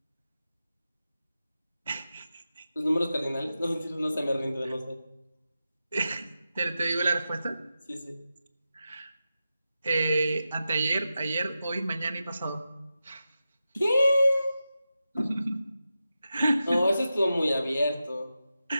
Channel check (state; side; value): inverted; both; correlation -0.91